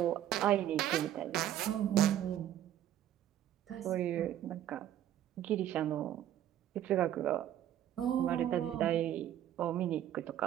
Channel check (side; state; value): left; quieter; 11.6 dB